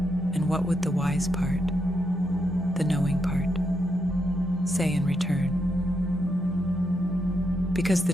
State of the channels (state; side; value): normal; both; correlation 0.81